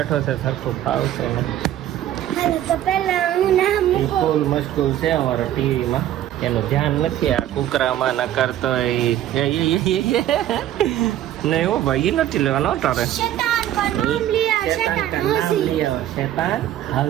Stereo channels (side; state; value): left; quieter; 12.2 dB